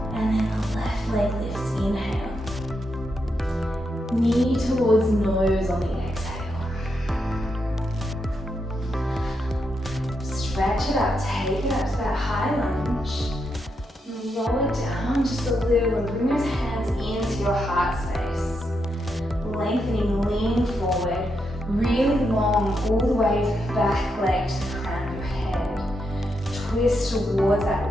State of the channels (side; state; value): both; normal; correlation 0.83